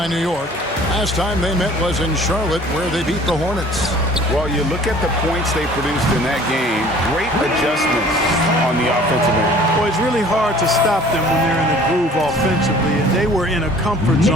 New York. Last time they met was in Charlotte, where they beat the Hornets. Well, you look at the points they produced in that game. Great adjustments on the offensive end. Well, it's really hard to stop them when they're in a groove offensively, and they were in a comfort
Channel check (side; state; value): both; normal; correlation 0.50